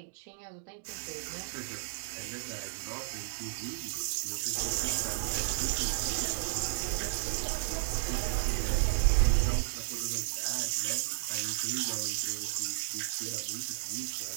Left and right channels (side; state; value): left; silent; digital silence